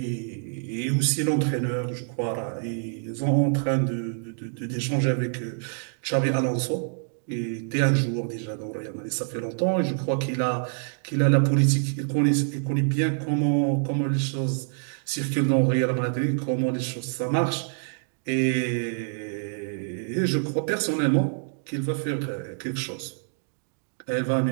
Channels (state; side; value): silent; left; digital silence